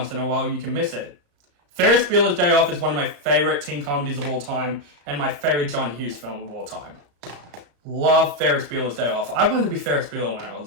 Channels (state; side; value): late; left; 34 ms